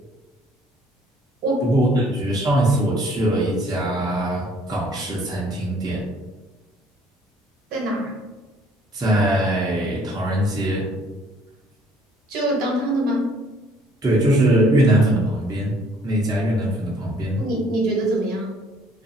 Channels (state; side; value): normal; both; correlation 0.60